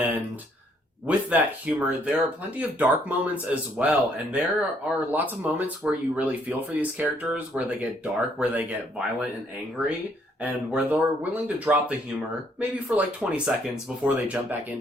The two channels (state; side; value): normal; both; correlation 0.68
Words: with that humor, there are plenty of dark moments as well, and there are lots of moments where you really feel for these characters, where they get dark, where they get violent and angry, and where they're willing to drop the humor, maybe for like 20 seconds before they jump back